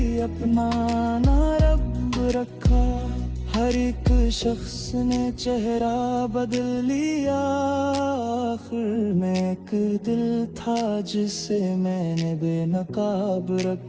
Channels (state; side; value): identical; both; correlation 1.00